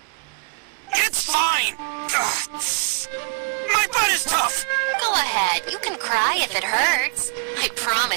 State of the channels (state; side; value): quieter; left; 28.9 dB